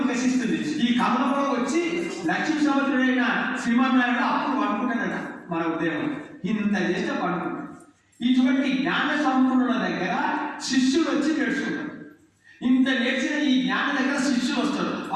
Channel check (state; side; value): identical; both; correlation 1.00